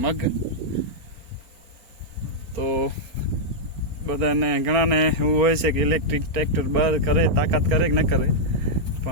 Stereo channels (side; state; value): left; late; 4.3 ms